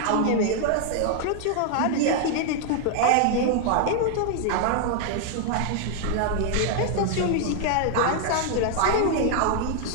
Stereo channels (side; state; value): both; different; correlation 0.00